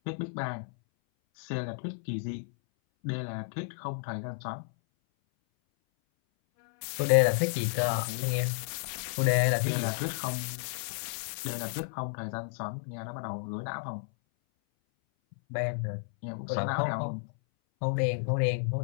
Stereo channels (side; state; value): right; silent; 57 dB below the other